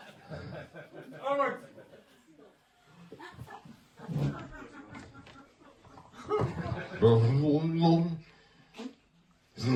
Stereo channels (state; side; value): identical; both; correlation 1.00